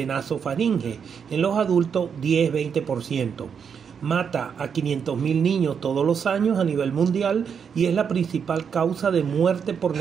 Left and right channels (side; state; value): left; quieter; 6.9 dB